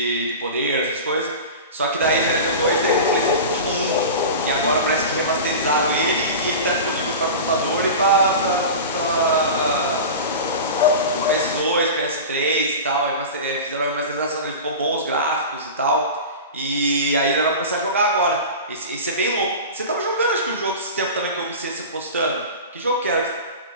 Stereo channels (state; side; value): inverted; both; correlation -0.30